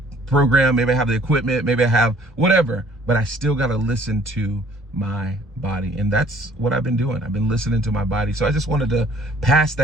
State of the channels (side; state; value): both; normal; correlation 0.58